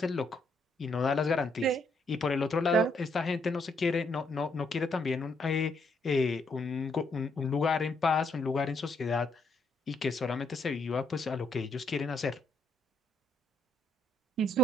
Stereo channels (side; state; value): both; normal; correlation 0.73